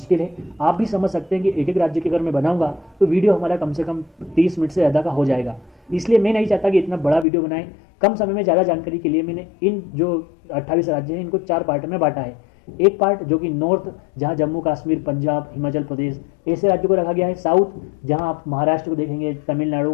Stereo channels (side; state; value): right; drops out; at 7.2 s